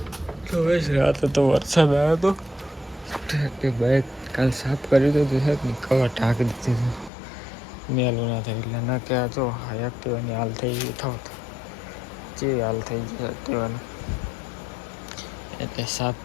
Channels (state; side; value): drops out; right; at 7.1 s